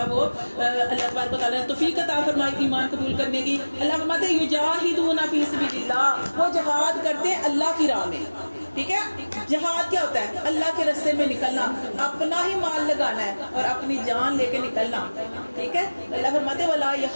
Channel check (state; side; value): inverted; both; correlation -1.00